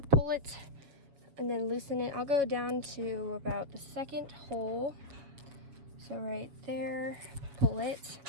Pull it and then loosen it. I'll go down to about the second hole. So right there, pull it.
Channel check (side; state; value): left; late; 7.2 ms